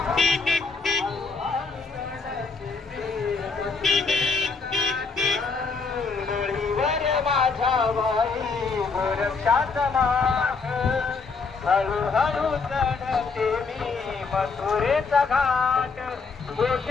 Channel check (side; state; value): right; quieter; 4.6 dB